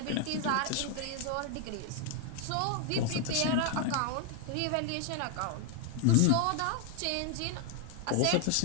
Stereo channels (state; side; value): different; both; correlation 0.00